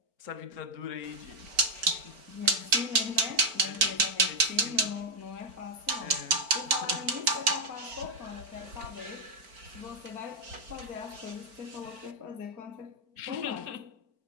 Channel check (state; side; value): late; left; 4.4 ms